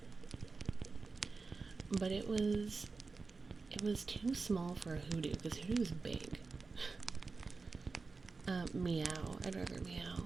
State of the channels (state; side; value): quieter; left; 4.2 dB